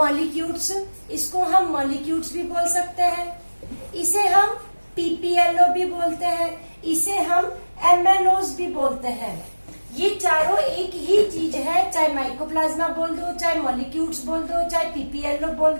इसको हम molecules भी बोल सकते हैं, इसे हम PPLO भी बोलते हैं, इसे हम MNOs भी बोलते हैं. ये चारों एक ही चीज है, चाहे माइकोप्लाज्मा बोल दो, चाहे मॉलिक्यूल्स बोल दो, चाहे पीपीएलओ बोल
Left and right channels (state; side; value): inverted; both; correlation -1.00